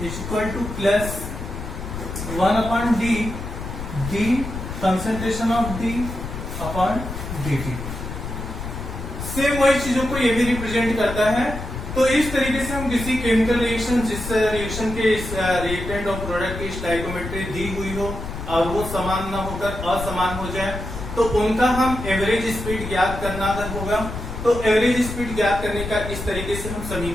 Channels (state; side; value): noise; left; rumble, 7 dB below the sound